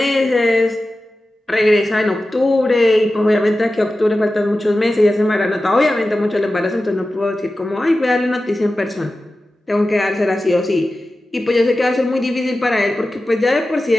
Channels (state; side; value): normal; both; correlation 0.94